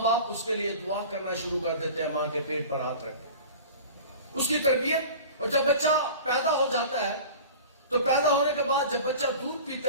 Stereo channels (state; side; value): inverted; both; correlation -0.38